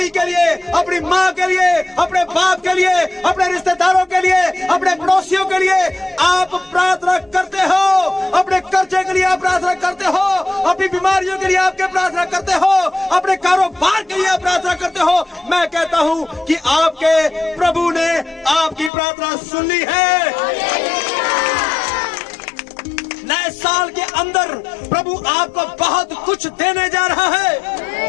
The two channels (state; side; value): drops out; right; at 18.9 s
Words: के लिए, अपनी माँ के लिए, अपने बाप के लिए, अपने रिश्तेदारों के लिए, अपने पड़ोसियों के लिए आप प्रार्थना करते हो। अपने कर्जे के लिए आप प्रार्थना करते हो, अपनी बीमारियों के लिए आपके प्रार्थना करते हो, अपने कारोबार के लिए आप प्रार्थना करते हो। मैं कहता हूँ कि आपके प्रभु ने आपकी प्रार्थना सुन ली है। नए साल के अंदर प्रभु आपको बहुत कुछ देने जा रहा है।